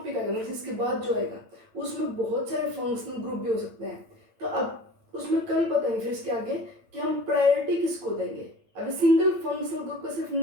आएगा, मतलब इसके बाद जो आएगा, उसमें बहुत सारे फंक्शनल ग्रुप भी हो सकते हैं। तो अब उसमें कल बताएंगे फिर इसके आगे कि हम प्रायोरिटी किसको देंगे। अभी सिंगल फंक्शनल ग्रुप का सिर्फ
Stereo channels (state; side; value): late; left; 8.9 ms